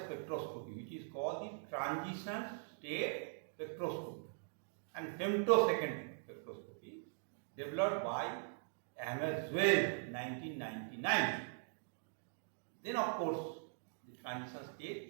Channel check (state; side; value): silent; left; digital silence